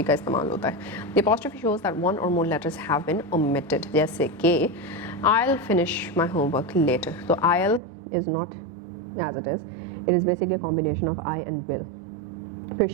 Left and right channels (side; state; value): left; drops out; at 7.8 s